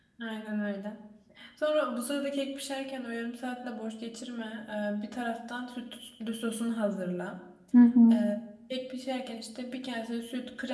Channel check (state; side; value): identical; both; correlation 1.00